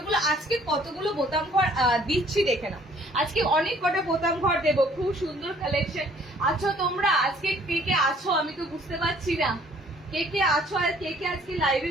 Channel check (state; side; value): normal; both; correlation 0.59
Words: আজকে কতগুলো বোতাম ঘর দিচ্ছি দেখে না। আজকে অনেক কটা বোতাম ঘর দেবো, খুব সুন্দর কালেকশন। আছো তোমরা আজকে কে কে আছো আমি তো বুঝতে পারছি না, কে কে আছো আর কে কে আজকে লাইভে